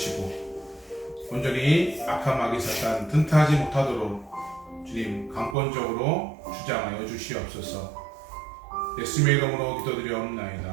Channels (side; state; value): left; drops out; at 5.6 s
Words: 온전히 악한 마귀 사탄 튼튼하지 못하도록 주님 강권적으로 주장하여 주시옵소서. 예수님의 이름으로